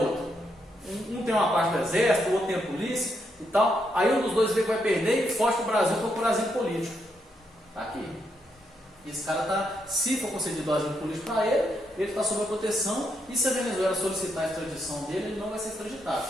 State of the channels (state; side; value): normal; both; correlation 0.79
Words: Um tem uma parte do exército, o outro tem a polícia e tal. Aí um dos dois vê que vai perder e foge para o Brasil para procurar asilo político. Tá aqui. E esse cara tá, se for concedido asilo político para ele está sob a proteção, e se a Venezuela solicitar a extradição dele, ele não vai ser extraditado.